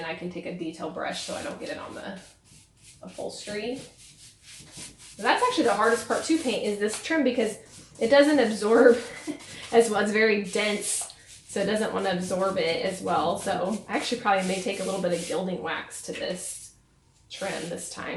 I can take a detail brush so I don't get it on the upholstery. But that's actually the hardest part to paint, is this trim, because it doesn't absorb as well. It's very dense, so it doesn't want to absorb it as well. So I actually probably may take a little bit of gilding wax to this trim this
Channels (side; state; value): both; identical; correlation 1.00